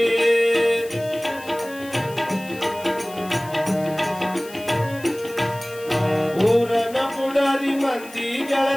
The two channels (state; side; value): noise; left; hiss, 19 dB below the sound